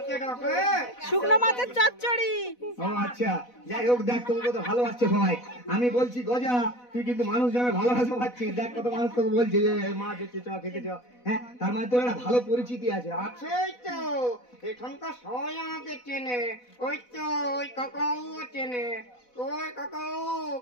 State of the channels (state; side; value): late; right; 4.1 ms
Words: ডাকে। শুকনো মাছের চচ্চড়ি। ও আচ্ছা, যাই হোক, দেখ তোকে কত ভালোবাসছে সবাই। আমি বলছি গজা, তুই কিন্তু মানুষ যাবে ভালোবাসা পাচ্ছিস। দেখ কত মানুষ তোকে বলছে যে মাছ হচ্ছে, চ খেতে চ। হ্যাঁ, তার মানে তোর একটা ভালো পরিচিতি আছে। আছেই তো, এখানকার সবাই আমাকে চেনে। ওই তো ওই কাকাও চেনে। ওই কাকাও,